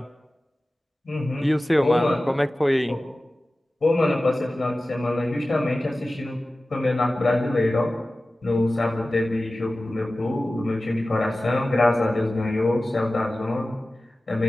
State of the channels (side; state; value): both; normal; correlation 0.96